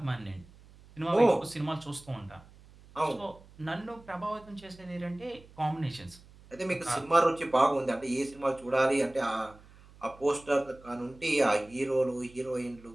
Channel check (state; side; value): noise; right; hum, 23 dB below the sound